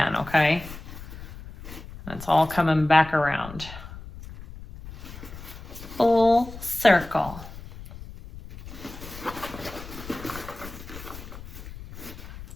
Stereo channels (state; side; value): noise; left; rumble, 14 dB below the sound